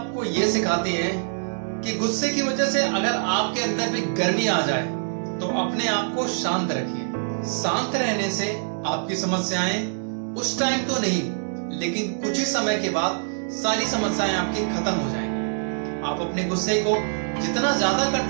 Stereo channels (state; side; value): silent; left; digital silence